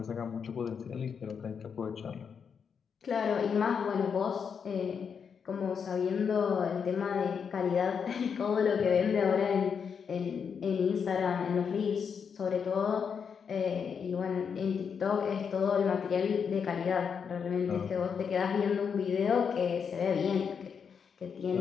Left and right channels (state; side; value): quieter; right; 6.6 dB